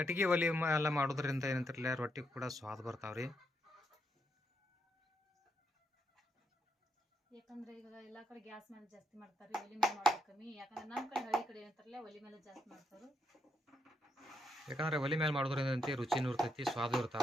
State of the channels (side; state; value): both; normal; correlation 0.79